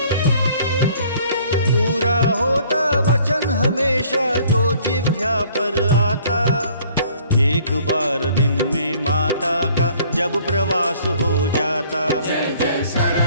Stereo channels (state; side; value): inverted; both; correlation -0.57